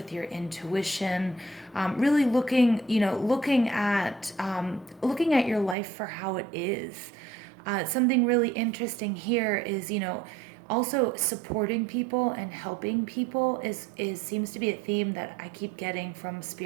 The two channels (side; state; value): left; drops out; at 5.8 s